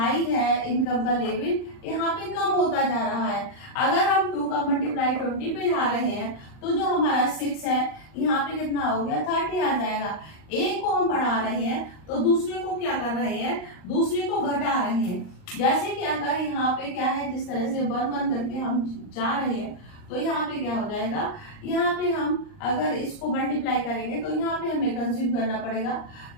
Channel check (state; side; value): late; right; 39 ms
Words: है इनकम का लेवल यहाँ पे कम होता जा रहा है। अगर हम 2 का मल्टीप्लाई 20 पे जा रहे हैं तो जो हमारा 6 है यहाँ पे कितना हो गया, 30 आ जाएगा। एक को हम बढ़ा रहे हैं तो दूसरे को क्या कर रहे हैं, दूसरे को घटा रहे हैं। जैसे कि अगर यहाँ पे क्या है, जिस तरह से 1 1 करके हम जा रहे हैं तो यहाँ पे क्या हो जाएगा, यहाँ पे हम अगर इसको मल्टीप्लाई करेंगे तो यहाँ पे हमें कंज्यूम करना पड़ेगा।